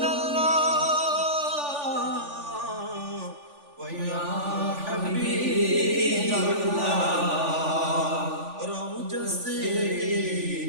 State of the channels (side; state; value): left; late; 3.4 ms